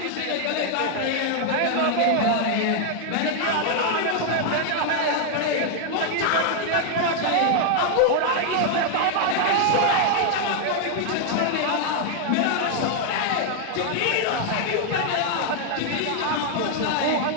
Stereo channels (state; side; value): different; both; correlation 0.00